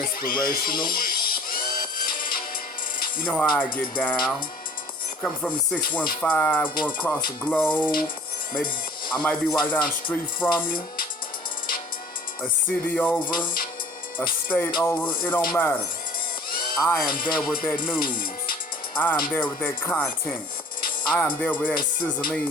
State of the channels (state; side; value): normal; both; correlation 0.49